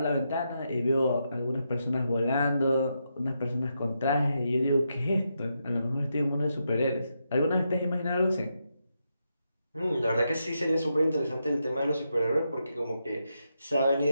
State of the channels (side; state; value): both; inverted; correlation -0.83